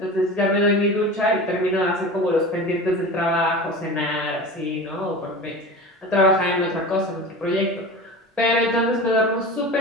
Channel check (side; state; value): both; normal; correlation 0.32